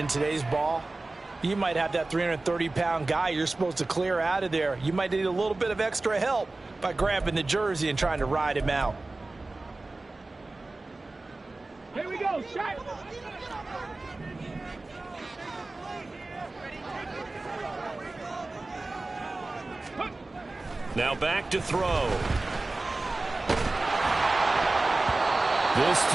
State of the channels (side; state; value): left; quieter; 3.1 dB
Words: today's ball, you might have that 330-pound guy you're supposed to clear out of there. You might need a little bit of extra help by grabbing the jersey and trying to ride him out. Here we go, shot. Now back to throw. This